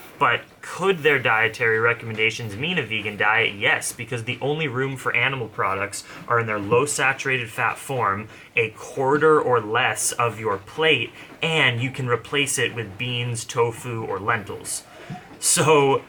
But could their dietary recommendations mean a vegan diet? Yes, because the only room for animal products are in their low saturated fat form, a quarter or less of your plate, and you can replace it with beans, tofu, or lentils. So,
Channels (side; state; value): both; identical; correlation 1.00